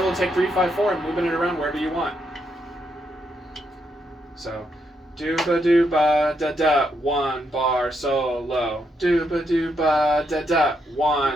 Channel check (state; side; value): normal; both; correlation 0.79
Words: to take 3-5-4 and moving it around wherever you want. So, dooba dooba da da, 1 bar solo. Dooba dooba da da,